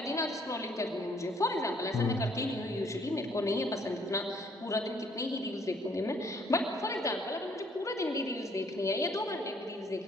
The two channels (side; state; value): both; normal; correlation 0.64